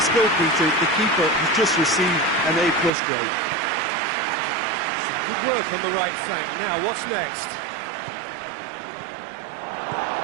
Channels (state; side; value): drops out; left; at 2.9 s